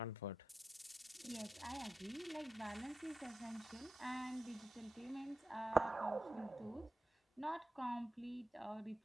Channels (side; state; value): both; normal; correlation 0.91